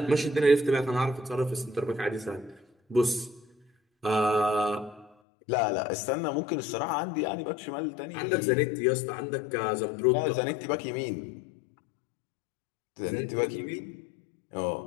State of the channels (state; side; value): drops out; right; at 5.1 s